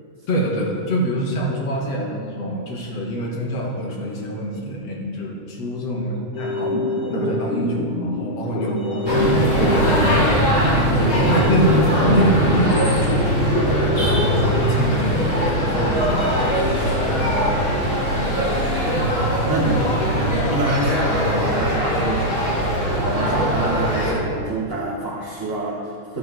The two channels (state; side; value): late; right; 6.5 ms